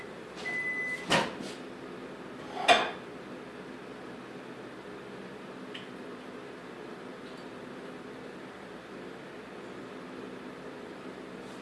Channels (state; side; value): identical; both; correlation 1.00